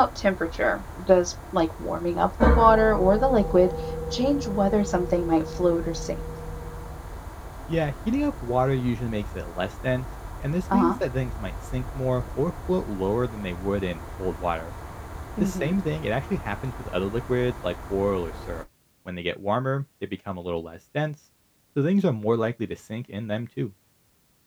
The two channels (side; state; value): both; identical; correlation 1.00